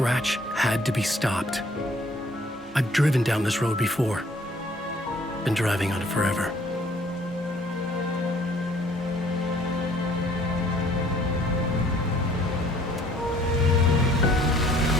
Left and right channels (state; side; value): normal; both; correlation 0.59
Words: had to be stopped. I've driven down this road before. Been driving on it forever.